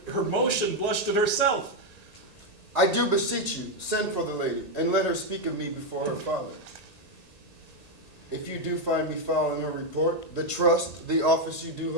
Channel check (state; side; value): late; right; 1.8 ms